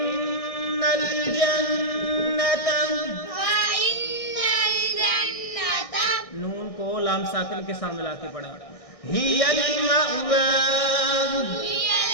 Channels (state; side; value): late; right; 1.6 ms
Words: الْجَنَّةَ، نون کو لام ساکن کے سامنے لا کے پڑھا۔ هِيَ الْمَأْوَى،